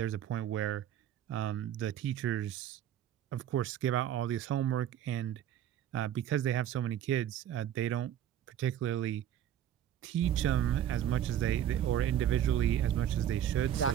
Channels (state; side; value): quieter; left; 10.7 dB